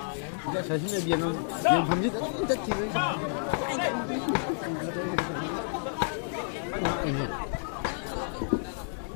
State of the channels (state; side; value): silent; right; digital silence